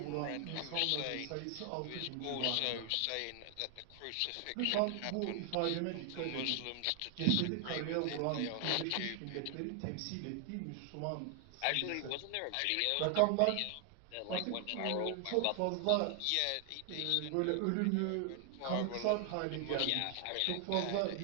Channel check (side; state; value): both; different; correlation 0.00